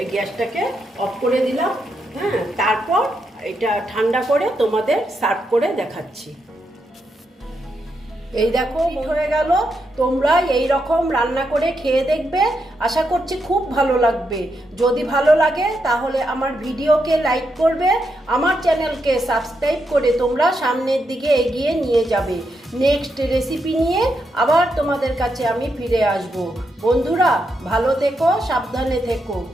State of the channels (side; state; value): both; normal; correlation 0.82